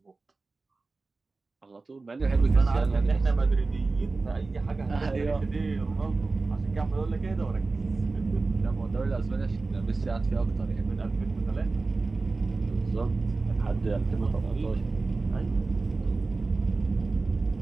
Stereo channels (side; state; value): left; quieter; 3.7 dB